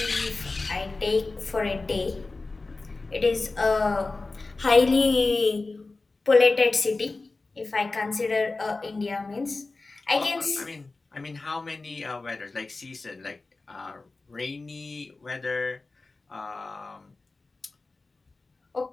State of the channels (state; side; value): quieter; right; 3.6 dB